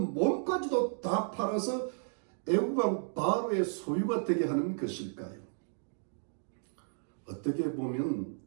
몸까지도 다 팔아서 애굽 왕 바로의 소유가 되게 하는 것일까요? 어떻게 보면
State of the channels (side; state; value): left; silent; 56 dB below the other